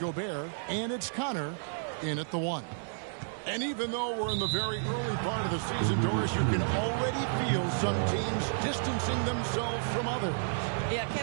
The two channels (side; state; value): left; silent; 57 dB below the other